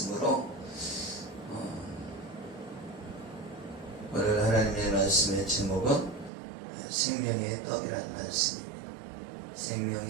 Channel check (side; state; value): left; drops out; at 6.3 s